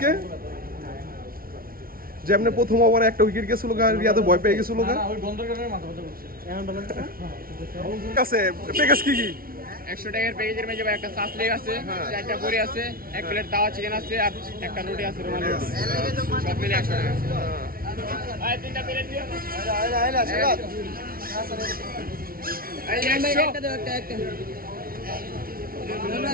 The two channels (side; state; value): left; late; 0.43 ms